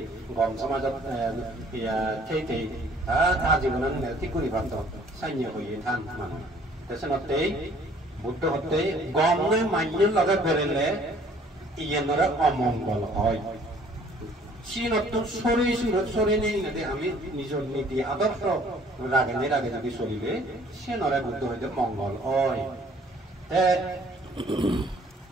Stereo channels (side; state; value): both; normal; correlation 0.56